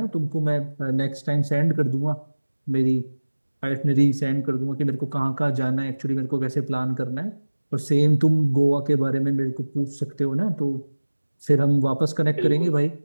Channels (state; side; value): inverted; both; correlation -1.00